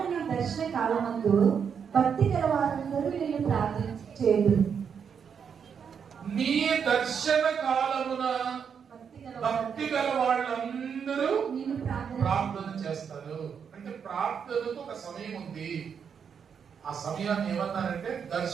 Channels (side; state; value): left; quieter; 7.0 dB